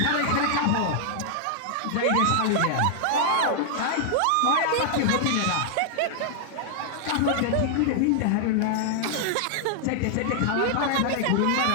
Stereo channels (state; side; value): different; both; correlation -0.01